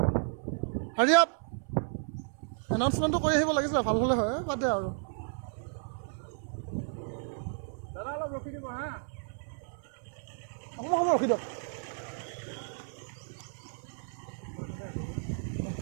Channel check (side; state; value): left; silent; 56 dB below the other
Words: হাৰি আপ এনাউন্সমেণ্টটো কৰি আহিব লাগিছিলে ভাল হ'লে হয় বাদ দে আৰু দাদা অলপ ৰখি দিব হা অকণমান সময় ৰখি দিয়ক